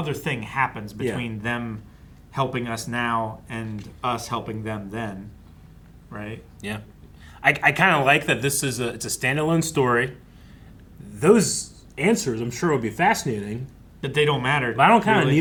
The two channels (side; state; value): both; identical; correlation 1.00